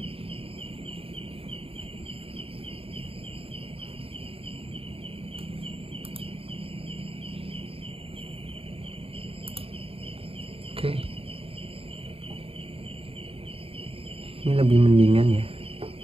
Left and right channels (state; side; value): late; left; 0.27 ms